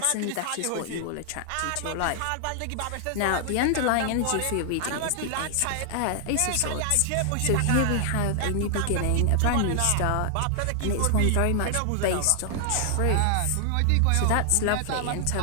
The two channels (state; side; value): different; both; correlation 0.00